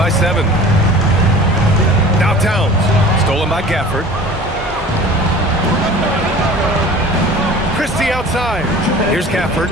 7. Now Towns, stolen by Gafford. Christie outside. Here's Gafford.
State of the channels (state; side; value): normal; both; correlation 0.43